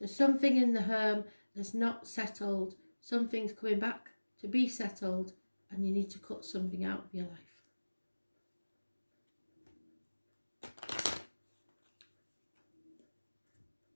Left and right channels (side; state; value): both; inverted; correlation -1.00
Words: something in the home that's not settled, something's coming back to be settled, and you need to cut something out of your life.